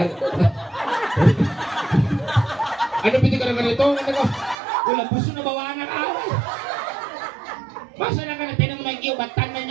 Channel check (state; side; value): drops out; left; at 4.5 s